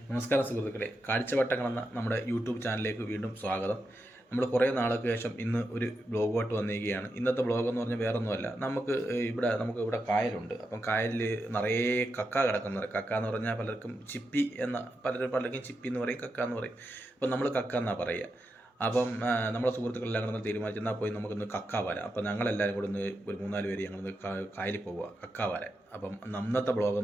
നമസ്കാരം സുഹൃത്തുക്കളെ, കാഴ്ചവട്ടങ്ങളെന്ന നമ്മുടെ യൂട്യൂബ് ചാനലിലേക്ക് വീണ്ടും സ്വാഗതം. നമ്മൾ കുറേ നാൾക്ക് ശേഷം ഇന്ന് ഒരു ബ്ലോഗുമായിട്ട് വന്നിരിക്കുകയാണ്. ഇന്നത്തെ ബ്ലോഗ് എന്ന് പറഞ്ഞാൽ വേറൊന്നുമല്ല, നമുക്ക് ഇവിടെ കായലുണ്ട്. അപ്പം കായലിൽ നിറയെ കക്ക കിടക്കുന്നത്. കക്ക എന്ന് പറഞ്ഞാൽ പലർക്കും ചിപ്പി എന്ന പലർക്കും ചിപ്പി എന്ന് പറയും, കക്ക എന്ന് പറയും. അപ്പം നമ്മൾ കക്ക എന്നാണ് പറയുക. അപ്പം നമ്മളെ സുഹൃത്തുക്കളെല്ലാം കൂടെ തീരുമാനിച്ചു എന്നാൽ പോയി നമുക്കൊന്ന് കക്ക വരാം. അപ്പം ഞങ്ങളെല്ലാവരും കൂടെ ഒന്ന് ഒരു 3-4 പേര് ഞങ്ങളൊന്ന് കായലിൽ പോവുക കക്ക വരാൻ. അപ്പം അന്നത്തെ ബ്ലോഗ്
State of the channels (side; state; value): both; normal; correlation 0.86